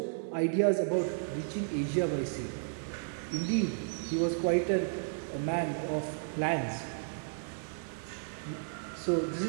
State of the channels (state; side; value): silent; left; digital silence